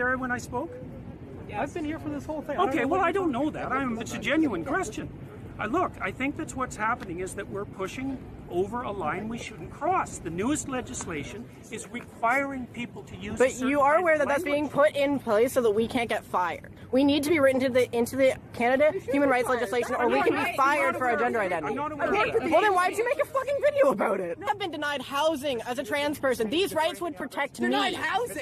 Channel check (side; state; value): both; identical; correlation 1.00